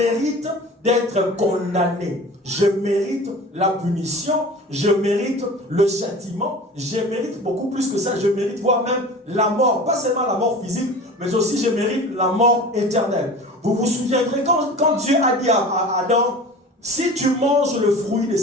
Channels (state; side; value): normal; both; correlation 0.38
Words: d'être condamné. Je mérite la punition, je mérite le châtiment, je mérite beaucoup plus que ça, je mérite voire même la mort. Pas seulement la mort physique, mais aussi je mérite la mort éternelle. Vous vous souviendrez quand Dieu a dit à Adam, si tu manges le fruit de